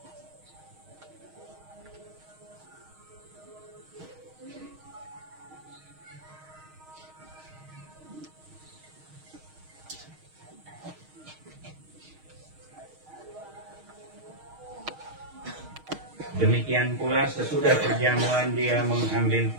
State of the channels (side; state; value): left; late; 6.4 ms